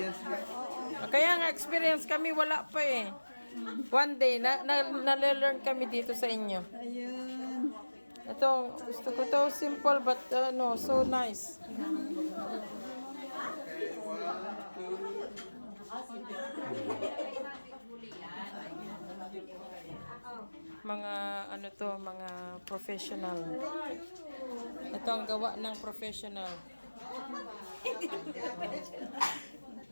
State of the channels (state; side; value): inverted; both; correlation -1.00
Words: na. Kaya nga experience kami wala pa eh. One day, nale-learn kami dito sa inyo. Ayun. Ito, gusto ko to simple but so nice. Mga mga professional. Ito ang gawa ng professional.